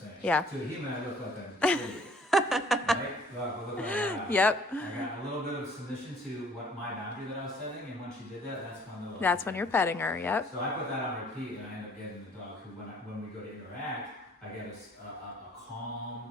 Yeah. To a human, I look like an idiot. Right? Look like that. Yep. I got a little bit of submission to what my boundary that I was setting, and when she did that, That's when you're petting her, yep. So I put that on repeat, and I end up getting the dog who, when we go to interact, I get a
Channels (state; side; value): normal; both; correlation 0.56